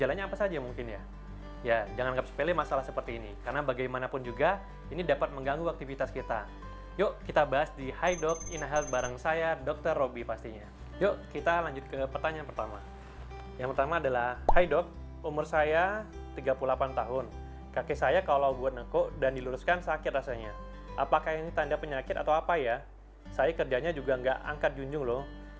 apa saja mungkin ya? Ya, jangan anggap sepele masalah seperti ini, karena bagaimanapun juga ini dapat mengganggu aktivitas kita. Yuk kita bahas di Hi Doc Ina Health bareng saya, Dr. Robby pastinya. Yuk kita lanjut ke pertanyaan pertama. Yang pertama adalah, Hi Doc, umur saya 38 tahun. Kaki saya kalau buat nekuk dan diluruskan sakit rasanya. Apakah ini tanda penyakit atau apa ya? Saya kerjanya juga nggak angkat junjung loh.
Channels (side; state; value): both; identical; correlation 1.00